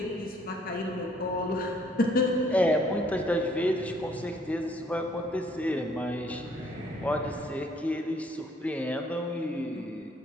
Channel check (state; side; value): normal; both; correlation 0.63